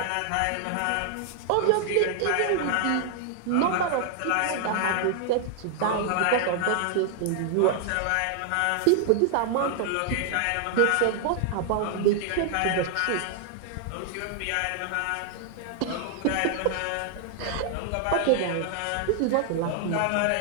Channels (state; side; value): different; both; correlation 0.00